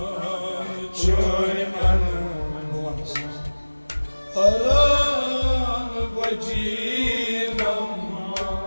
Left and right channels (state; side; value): inverted; both; correlation -1.00